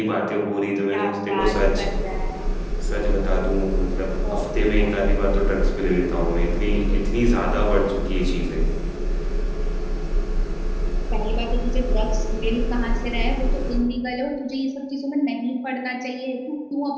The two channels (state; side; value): identical; both; correlation 1.00